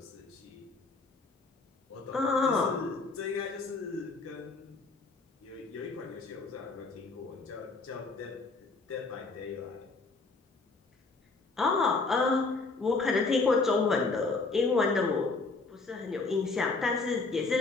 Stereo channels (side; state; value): right; quieter; 3.8 dB